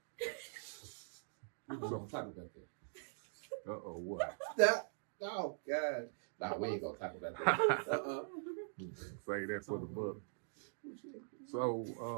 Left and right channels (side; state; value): left; silent; digital silence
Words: We're gonna talk about that. What? That, oh god. Nah, we ain't gonna talk about that. Say that for the book. So,